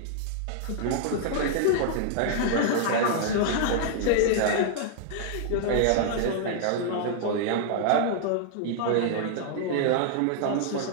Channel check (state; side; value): different; both; correlation -0.01